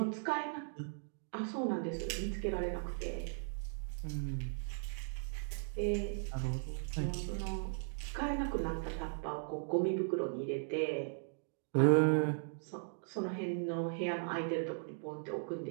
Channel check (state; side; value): silent; left; digital silence